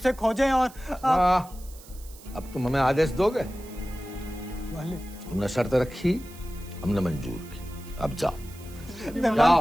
खोजें। और अब तुम हमें आदेश दोगे? वाले तुमने शर्त रखी, हमने मंजूर की, अब जाओ। नहीं,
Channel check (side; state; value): right; noise; hiss, 20 dB below the sound